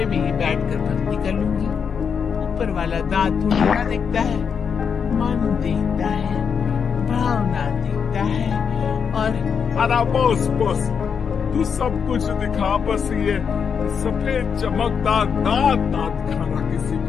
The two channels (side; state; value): right; quieter; 6.6 dB